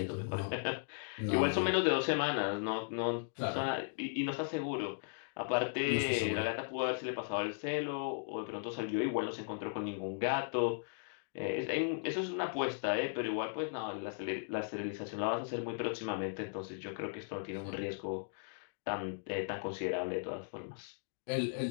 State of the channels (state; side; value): silent; right; digital silence